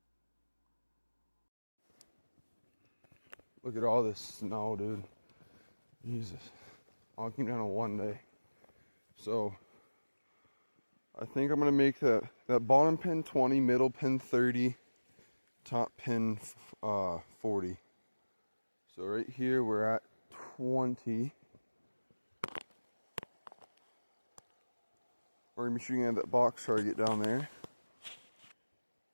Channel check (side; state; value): both; inverted; correlation -1.00